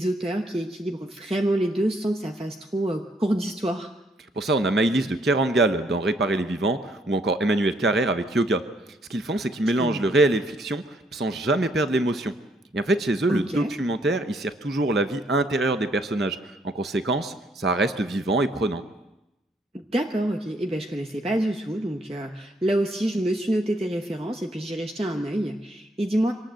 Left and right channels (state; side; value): normal; both; correlation 0.69